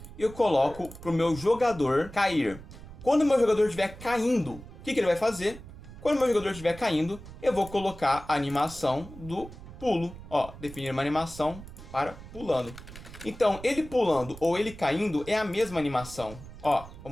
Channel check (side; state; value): right; noise; rumble, 15 dB below the sound